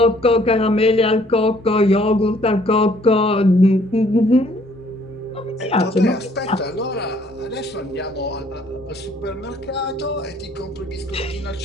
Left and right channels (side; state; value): both; normal; correlation 0.62